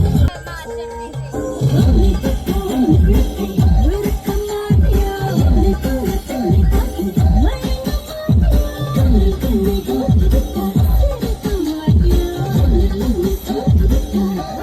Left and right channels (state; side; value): identical; both; correlation 1.00